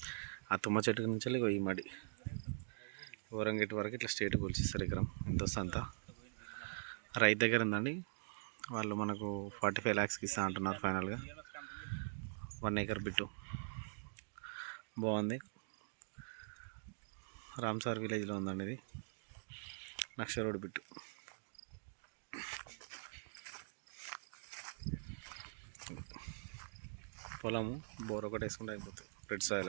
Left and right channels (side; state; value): left; silent; digital silence